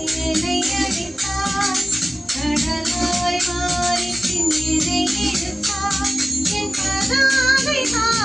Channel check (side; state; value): both; normal; correlation 0.97